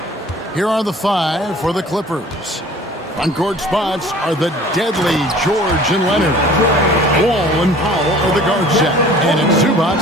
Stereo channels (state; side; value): normal; both; correlation 0.48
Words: Here are the 5 for the Clippers. On-court spots are the deadly George and Leonard. Wall and Powell are the guard set. And it's